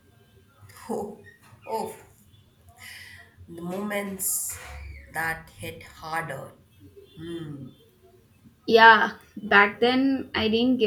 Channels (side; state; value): both; identical; correlation 1.00